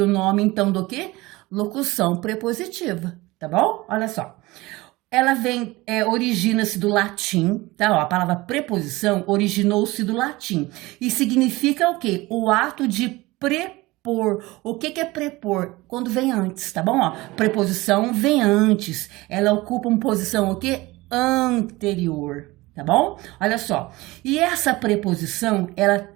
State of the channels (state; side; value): quieter; left; 20.7 dB